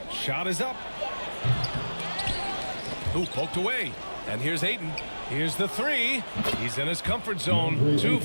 Shot is up. Ooh, poked away. And here's Ayton. Here's the 3. He's in his comfort zone. 2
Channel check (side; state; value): both; inverted; correlation -1.00